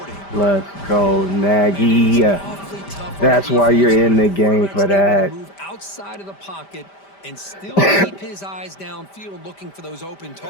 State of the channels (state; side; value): late; right; 5.1 ms